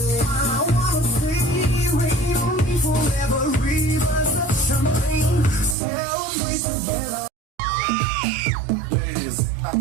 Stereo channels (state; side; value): drops out; left; at 5.8 s